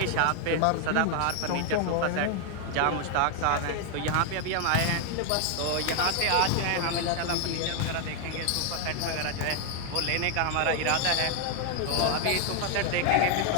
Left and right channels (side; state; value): both; different; correlation 0.00